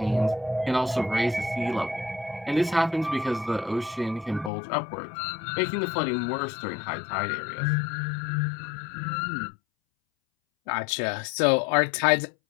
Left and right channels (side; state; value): right; drops out; at 4.5 s